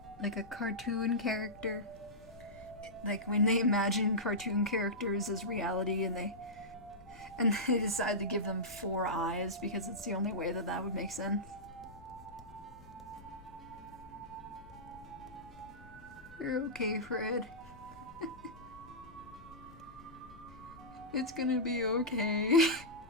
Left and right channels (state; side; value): noise; left; rumble, 20 dB below the sound